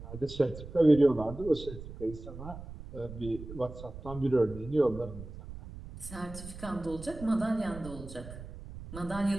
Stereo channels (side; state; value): right; noise; rumble, 13 dB below the sound